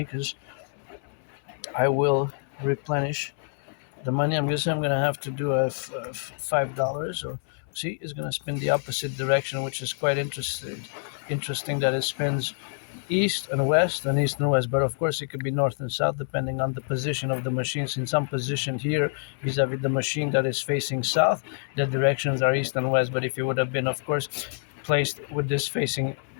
because I will replenish the money. I'm gonna have to do a $5. So see, it's gonna spin the opposite direction, which is quite interesting that it spins east and west and east and west, but of course it could be north and south depending on the position of the machine. Since I'm positioned here vis-a-vis the machine that is facing south, the directions are east and west. But if it would have been, of course, placed with this facing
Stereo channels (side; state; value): right; silent; 60 dB below the other